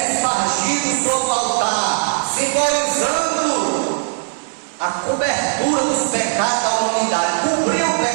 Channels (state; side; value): silent; left; digital silence